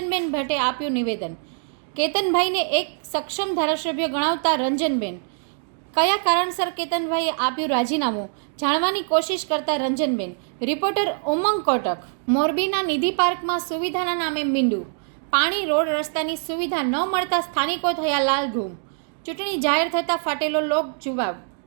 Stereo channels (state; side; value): silent; left; digital silence